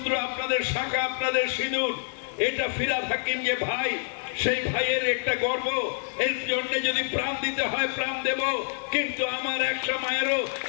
আপনাদের শাঁখা, আপনাদের সিঁদুর, এটা ফিরহাদ হাকিম যে ভাই, সেই ভাইয়ের একটা গর্ব। এর জন্য যদি প্রাণ দিতে হয় প্রাণ দেব, কিন্তু আমার একটা মায়েরও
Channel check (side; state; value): right; silent; digital silence